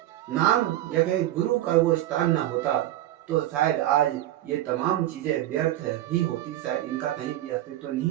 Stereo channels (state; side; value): quieter; left; 14.0 dB